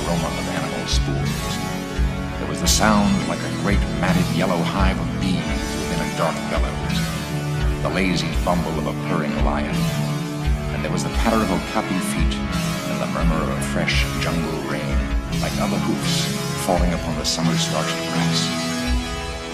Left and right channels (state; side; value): identical; both; correlation 1.00